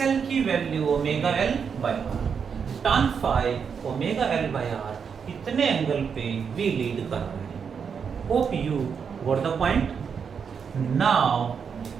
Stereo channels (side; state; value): left; quieter; 6.6 dB